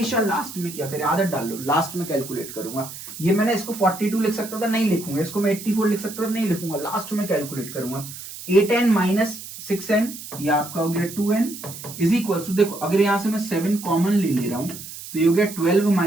लास्ट में क्या करें, आदत डाल लो, लास्ट में कैलकुलेट करूंगा। ये मैंने इसको 42 लिख सकता था, नहीं लिखूंगा। इसको मैं 84 लिख सकता था, नहीं लिखूंगा, लास्ट में कैलकुलेट करूंगा। 8n माइनस 6n ये आपका हो गया 2n इज इक्वल टू, देखो अगर यहां से मैं 7 कॉमन ले रहा हूं तो ये हो गया 12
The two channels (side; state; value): right; noise; hiss, 12 dB below the sound